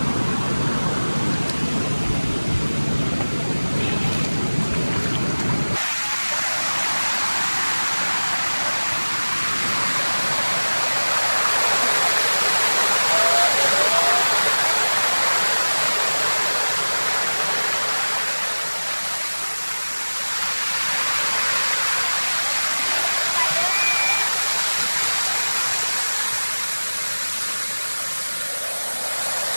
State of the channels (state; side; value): inverted; both; correlation -1.00